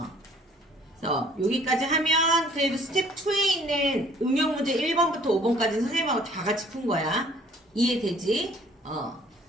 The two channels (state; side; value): normal; both; correlation 0.56